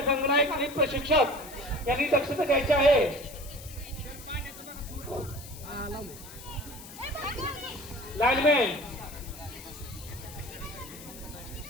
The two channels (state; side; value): noise; left; hiss, 16 dB below the sound